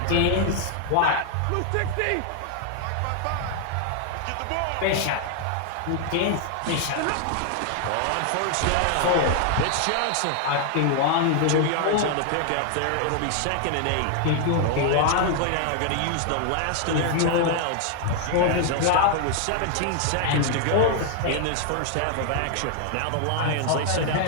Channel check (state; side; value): different; both; correlation 0.00